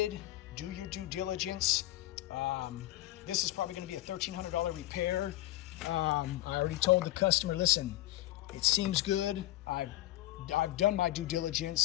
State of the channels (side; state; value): right; quieter; 15.9 dB